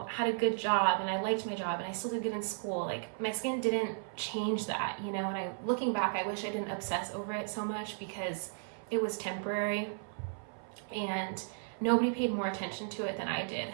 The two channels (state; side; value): silent; left; 55 dB below the other